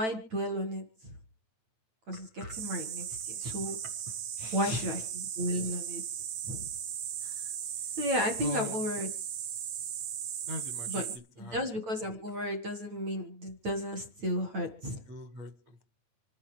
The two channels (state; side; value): late; left; 9.3 ms